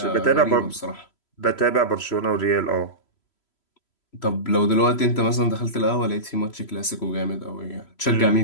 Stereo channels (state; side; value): late; right; 3.0 ms